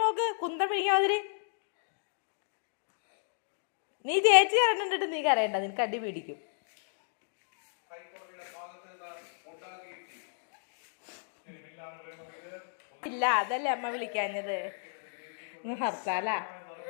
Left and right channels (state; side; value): silent; right; digital silence